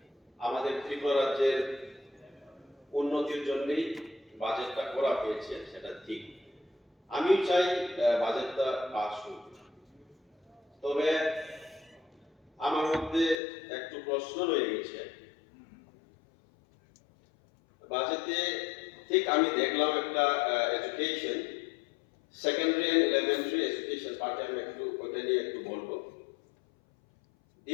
আমাদের ত্রিপুরা রাজ্যের উন্নতির জন্যই বাজেটটা করা হয়েছে, সেটা ঠিক। আমিও চাই বাজেটটা পাস হোক, তবে আমার মধ্যে একটু প্রশ্ন রয়ে গেছে। বাজেটে ঠিক আমি দেখলাম একটা education, secondary and elementary education পার্টে আমি একটু ওটা নিয়ে একটু বলবো।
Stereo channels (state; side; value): drops out; right; at 13.4 s